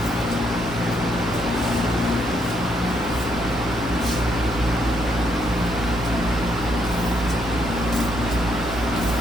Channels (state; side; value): normal; both; correlation 0.74